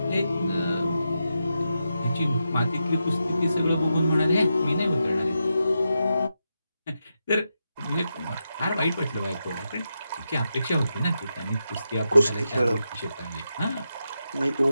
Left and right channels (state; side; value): inverted; both; correlation -0.87